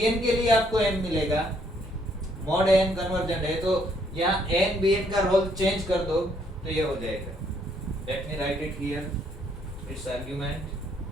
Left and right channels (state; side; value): normal; both; correlation 0.69